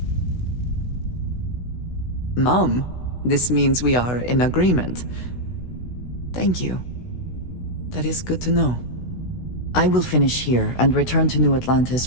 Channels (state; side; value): late; right; 16 ms